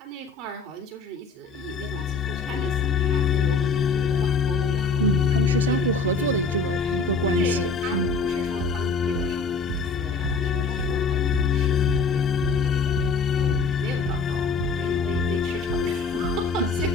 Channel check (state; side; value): quieter; right; 4.5 dB